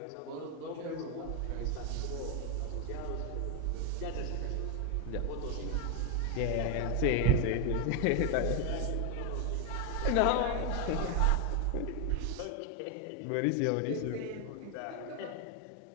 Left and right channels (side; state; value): both; different; correlation 0.01